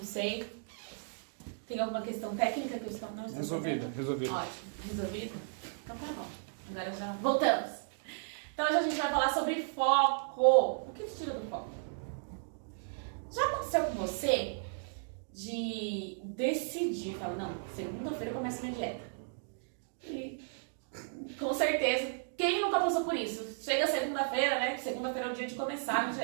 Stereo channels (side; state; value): left; silent; digital silence